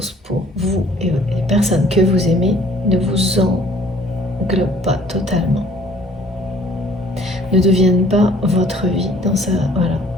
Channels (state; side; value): normal; both; correlation 0.57